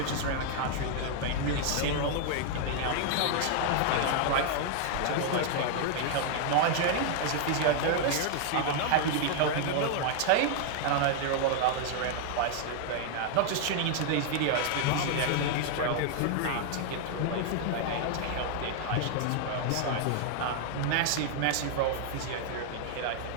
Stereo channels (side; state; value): both; different; correlation 0.00